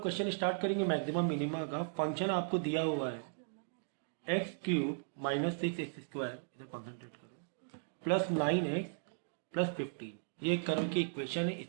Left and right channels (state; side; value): silent; left; digital silence